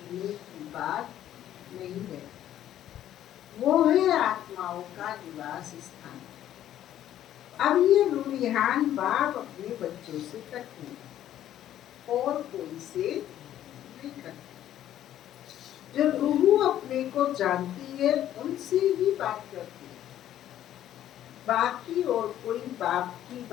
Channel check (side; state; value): right; quieter; 11.8 dB